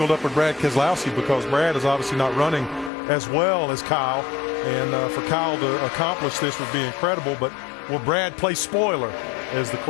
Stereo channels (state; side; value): drops out; right; at 2.9 s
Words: up with Brad Keselowski, because Brad is obviously not running as well as Kyle, and for Kyle to accomplish this would be incredible. But will Brad play spoiler is the